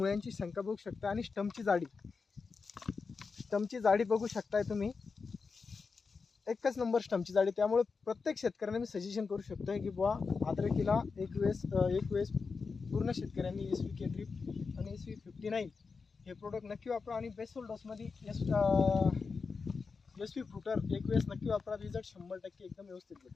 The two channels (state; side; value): quieter; right; 4.8 dB